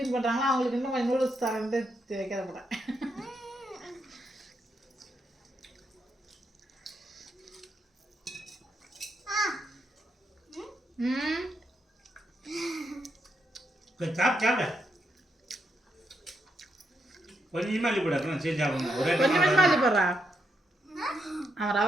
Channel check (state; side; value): normal; both; correlation 0.80